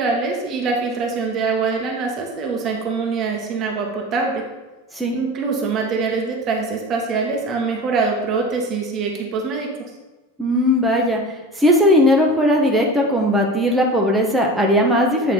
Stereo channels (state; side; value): normal; both; correlation 0.34